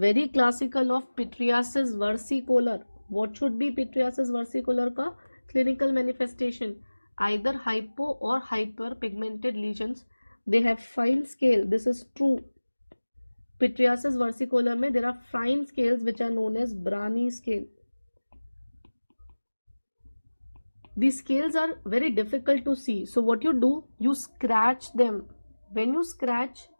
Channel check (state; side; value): inverted; both; correlation -1.00